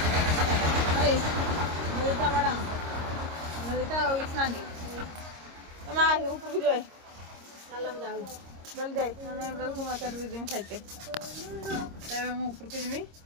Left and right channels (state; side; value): late; left; 26 ms